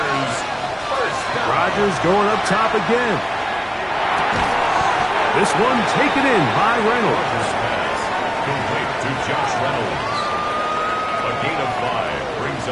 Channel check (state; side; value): identical; both; correlation 1.00